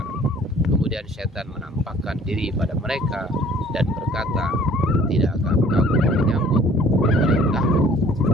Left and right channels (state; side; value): normal; both; correlation 0.54